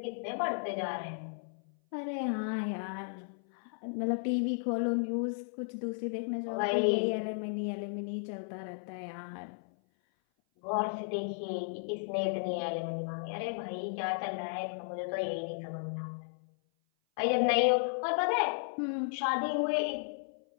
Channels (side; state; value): right; silent; 55 dB below the other